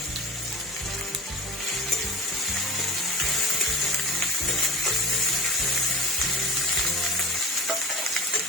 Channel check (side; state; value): both; normal; correlation 0.34